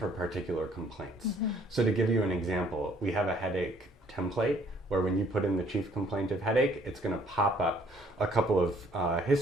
particular complaints. So to give you an example, we have a headache template where when you put in the chief complaint of headache, it's going to pop up a couple of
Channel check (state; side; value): normal; both; correlation 0.61